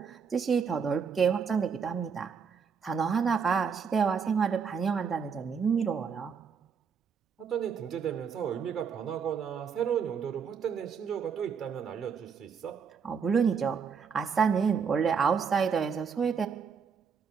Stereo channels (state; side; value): quieter; left; 6.3 dB